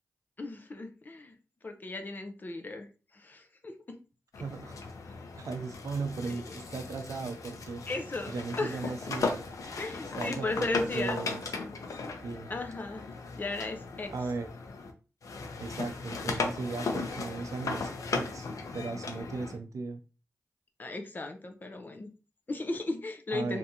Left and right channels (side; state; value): both; normal; correlation 0.70